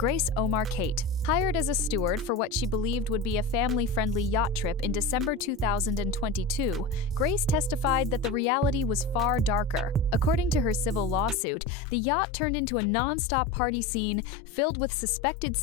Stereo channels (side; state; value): right; drops out; at 11.4 s